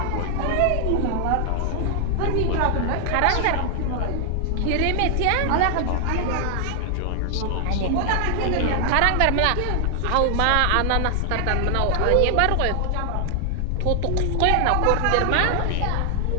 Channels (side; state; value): both; different; correlation 0.00